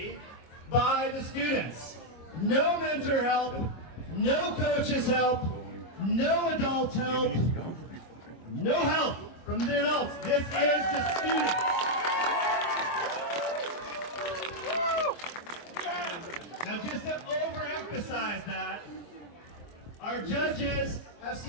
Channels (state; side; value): late; right; 25 ms